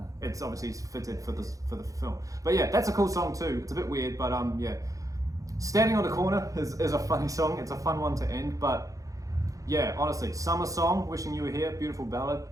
It's obviously fitted for the film. But yeah, that's a cool song too. It's a bit weird, but Standing on the Corner is a funny song. It's a fun one to end, but Yeah, honestly, Summer Song, Wishing You Were Here, beautiful ballad.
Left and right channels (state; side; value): late; left; 0.16 ms